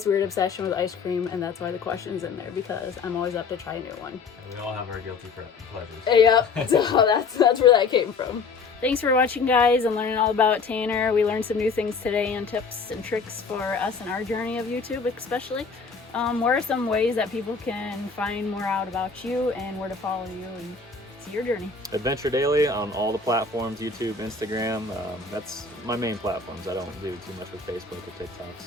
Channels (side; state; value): right; quieter; 4.7 dB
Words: weird obsession with ice cream, and that's why the question's in there, because I'm always up to try a new one. We all have our guilty pleasures. Yep, so that's where that came from. Thanks for watching, guys, and learning all about Tanner. We learned some new things today and tips and tricks for us in our journey of YouTube, especially. What are some ways that people can find more out about you and where to follow you and see your journey? Adventure Daily on all the platforms, YouTube, Instagram. That's my main platforms. I don't do too much with Facebook or TikTok.